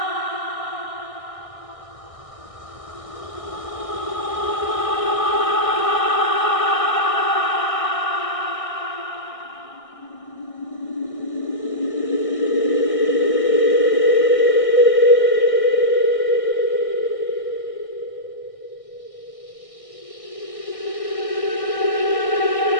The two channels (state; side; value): late; right; 1.6 ms